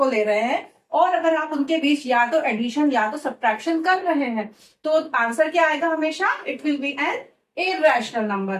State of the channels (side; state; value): both; identical; correlation 1.00